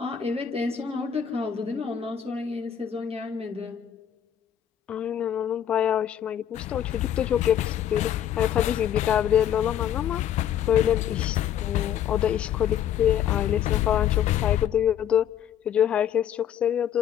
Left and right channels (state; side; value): quieter; right; 9.8 dB